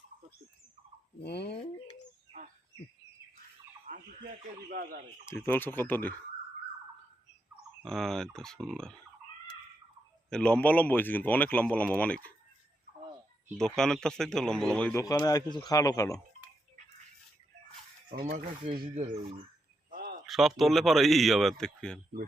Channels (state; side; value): normal; both; correlation 0.83